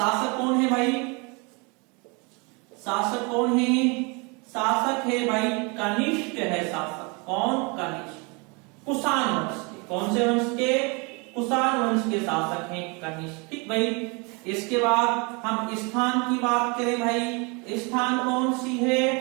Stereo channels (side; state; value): left; quieter; 30.5 dB